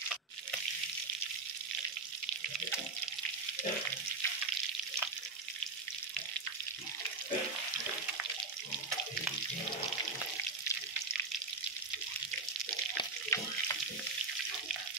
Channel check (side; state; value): left; quieter; 3.9 dB